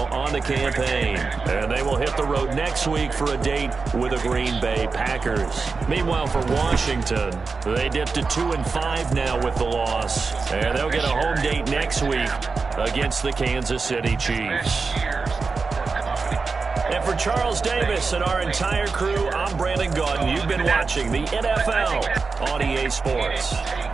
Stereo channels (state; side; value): quieter; left; 4.5 dB